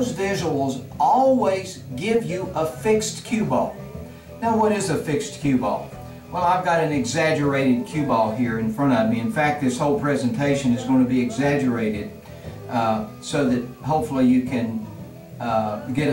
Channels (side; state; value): both; identical; correlation 1.00